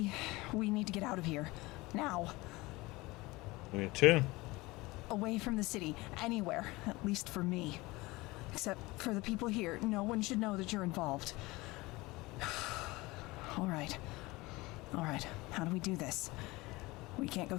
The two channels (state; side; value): quieter; right; 21.7 dB